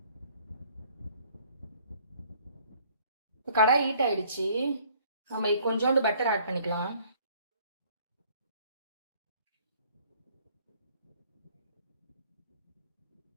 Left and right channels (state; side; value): inverted; both; correlation -0.58